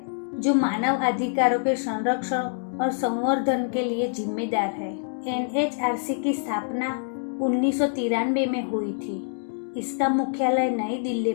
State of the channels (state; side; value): silent; right; digital silence